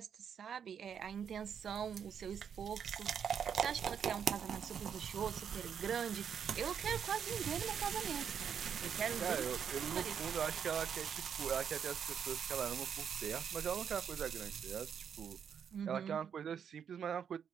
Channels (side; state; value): left; quieter; 7.8 dB